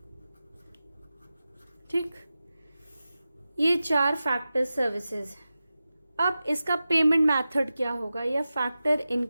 ठीक। ये 4 फैक्टर सर्विसेज। अब इसका पेमेंट मेथड क्या होगा, या फैक्टर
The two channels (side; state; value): both; inverted; correlation -0.94